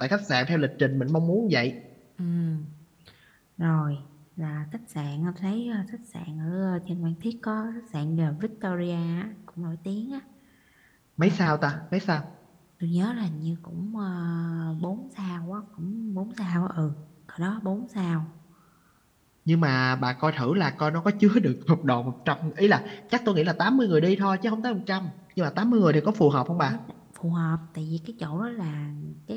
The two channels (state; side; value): identical; both; correlation 1.00